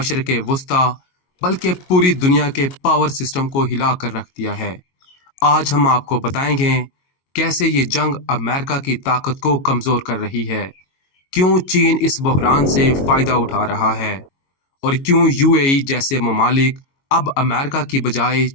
वस्ता बल्कि पूरी दुनिया के पावर सिस्टम को हिला कर रख दिया है। आज हम आपको बताएंगे कैसे ये जंग अमेरिका की ताकत को कमज़ोर कर रही है, क्यों चीन इस बहरान से फ़ायदा उठा रहा है और क्यों यूएई जैसे ममालिक अब अमेरिका की बजाय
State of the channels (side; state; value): right; late; 22 ms